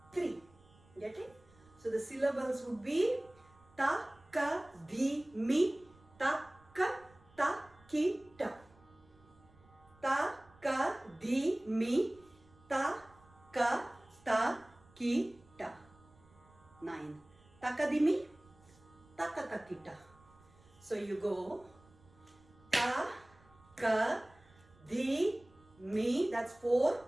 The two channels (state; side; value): noise; right; rumble, 27 dB below the sound